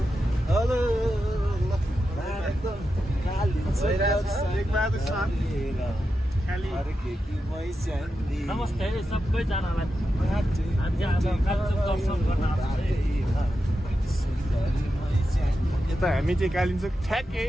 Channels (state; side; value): normal; both; correlation 0.89